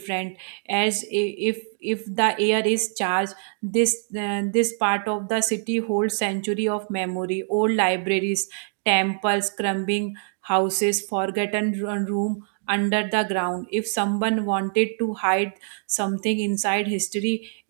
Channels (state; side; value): silent; left; digital silence